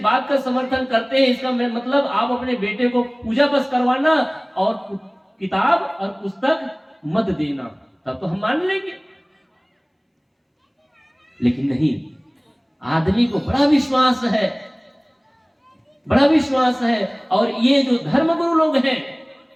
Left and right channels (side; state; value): both; identical; correlation 1.00